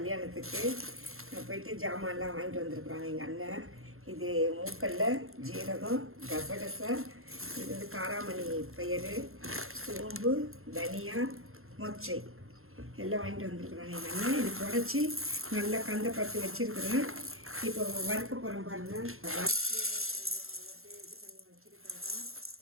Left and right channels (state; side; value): late; left; 0.61 ms